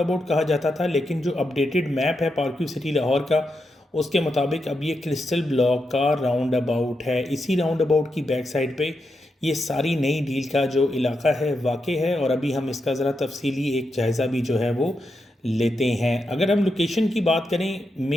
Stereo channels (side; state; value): both; normal; correlation 0.85